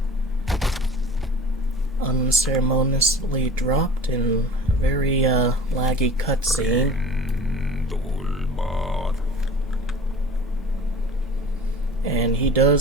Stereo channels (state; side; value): normal; both; correlation 0.42